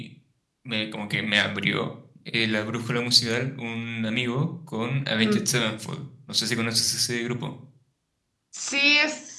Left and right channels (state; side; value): identical; both; correlation 1.00